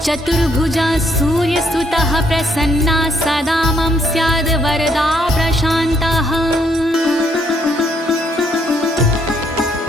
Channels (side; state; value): both; normal; correlation 0.71